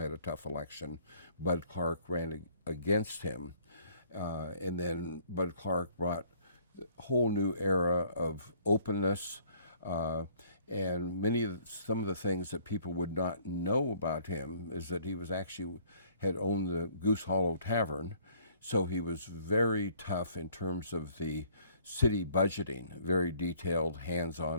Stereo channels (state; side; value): inverted; both; correlation -0.58